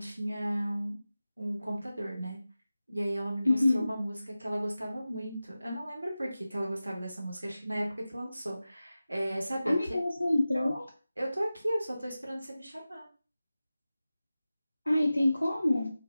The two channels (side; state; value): both; inverted; correlation -0.95